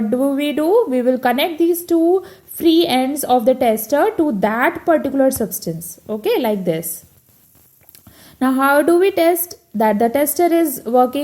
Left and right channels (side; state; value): both; identical; correlation 1.00